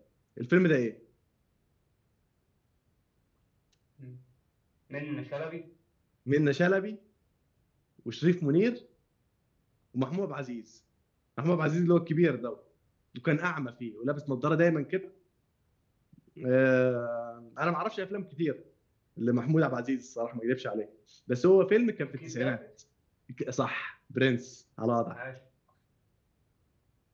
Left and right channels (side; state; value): both; identical; correlation 1.00